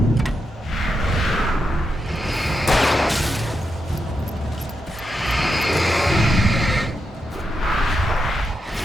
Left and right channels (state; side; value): normal; both; correlation 0.85